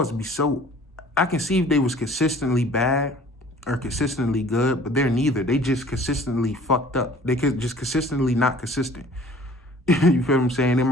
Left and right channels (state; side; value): normal; both; correlation 0.50